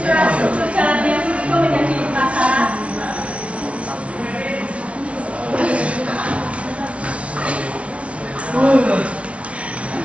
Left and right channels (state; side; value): late; left; 0.062 ms